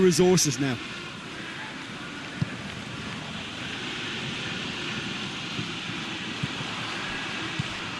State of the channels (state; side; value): identical; both; correlation 1.00